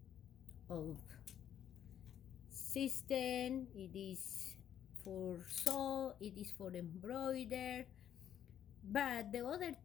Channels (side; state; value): right; quieter; 9.9 dB